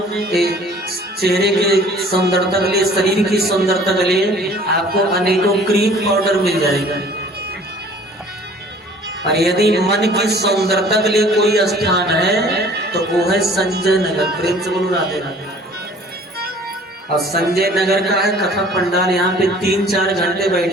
चेहरे के सुंदरता के लिए, शरीर की सुंदरता के लिए आपको अनेकों क्रीम पाउडर मिल जाएगा। और यदि मन की सुंदरता के लिए कोई स्थान है तो वो है संजय नगर। प्रेम से बोलो राधे राधे। और संजय नगर का है कथा पंडाल। यहाँ पे 3-4 घंटे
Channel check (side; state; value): both; normal; correlation 0.51